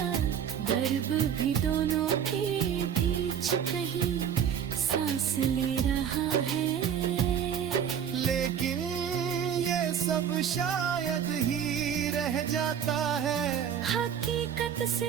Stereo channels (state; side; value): quieter; left; 8.4 dB